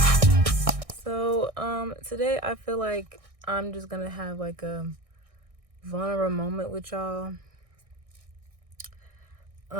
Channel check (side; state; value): left; late; 1.6 ms